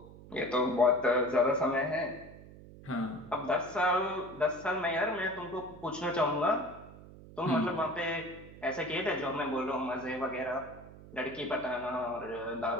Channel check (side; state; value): right; noise; hum, 18 dB below the sound